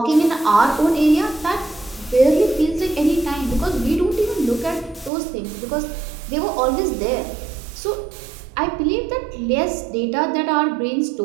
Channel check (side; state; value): left; drops out; at 5.1 s